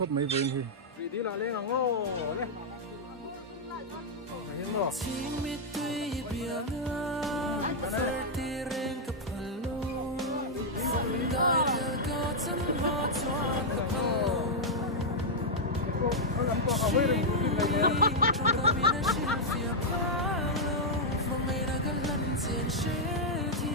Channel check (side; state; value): both; normal; correlation -0.04